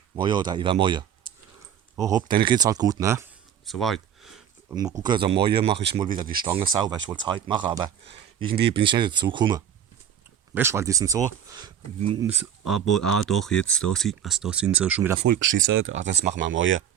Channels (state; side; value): quieter; left; 9.2 dB